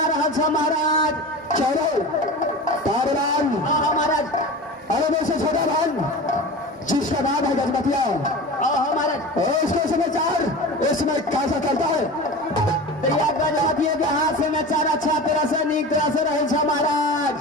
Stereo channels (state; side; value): normal; both; correlation 0.32